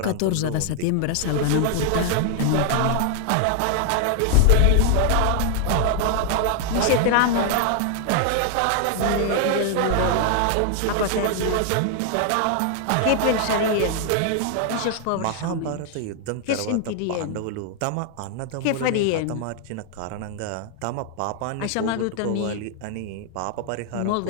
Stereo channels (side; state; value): both; different; correlation 0.00